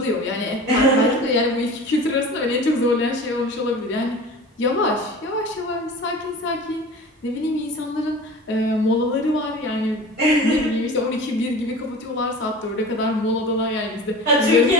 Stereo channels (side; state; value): both; normal; correlation 0.37